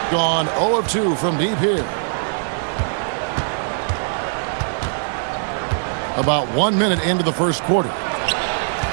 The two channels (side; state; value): left; silent; digital silence